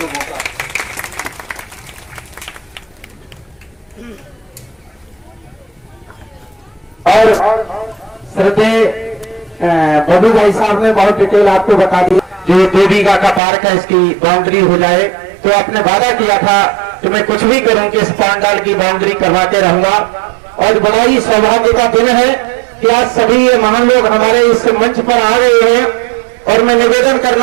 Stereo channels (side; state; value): left; drops out; at 13.4 s